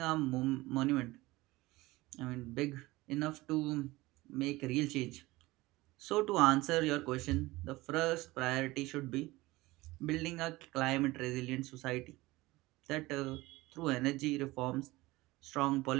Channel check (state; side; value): quieter; left; 19.9 dB